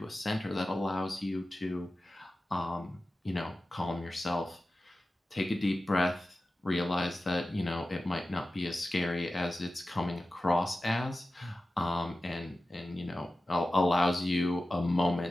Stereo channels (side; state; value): both; normal; correlation 0.94